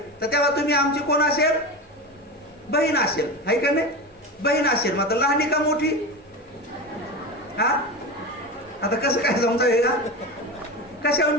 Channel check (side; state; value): both; normal; correlation 0.24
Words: तर तेव्हा तुम्ही आमची कोण असेल? बहीण असेल, आहे का नाही? बहीण असेल. मग लहानी का मोठी? हा आता कसं काय समजावे का?